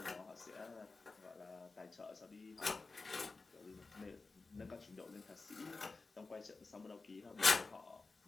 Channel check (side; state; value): right; quieter; 3.8 dB